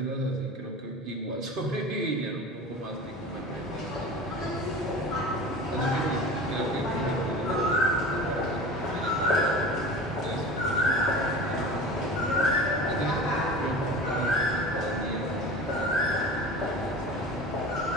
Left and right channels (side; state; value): both; normal; correlation 0.35